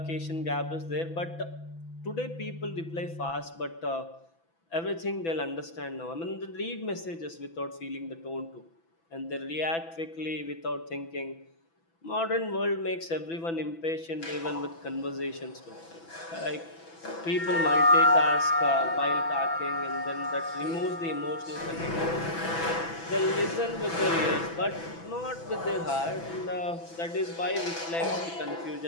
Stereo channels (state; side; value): late; right; 6.0 ms